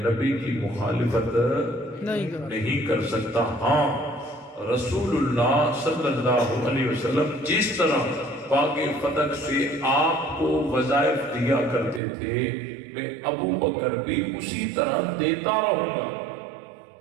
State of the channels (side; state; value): left; drops out; at 12.0 s